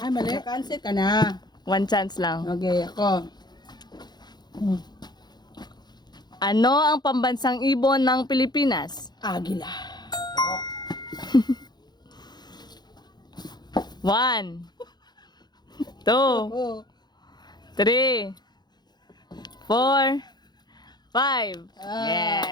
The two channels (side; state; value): right; late; 0.21 ms